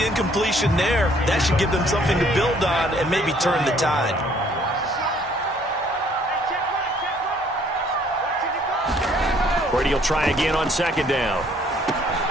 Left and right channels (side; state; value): both; normal; correlation 0.61